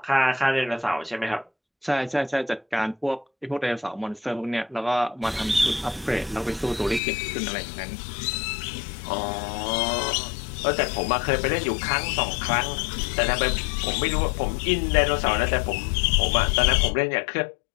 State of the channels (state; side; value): drops out; right; at 7.0 s